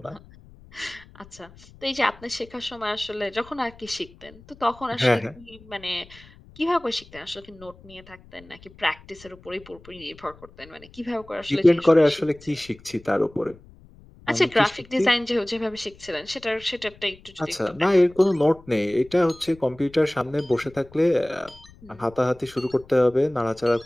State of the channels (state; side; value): noise; left; rumble, 23 dB below the sound